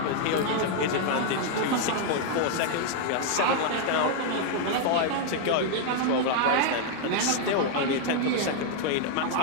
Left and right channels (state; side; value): different; both; correlation 0.00